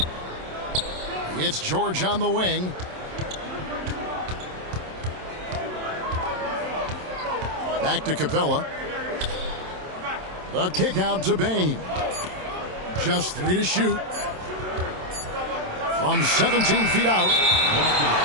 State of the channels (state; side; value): late; left; 27 ms